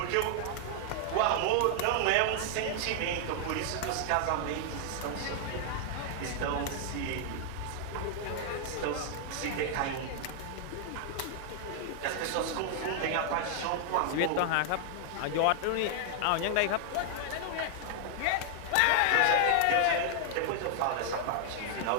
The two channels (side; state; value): both; different; correlation 0.00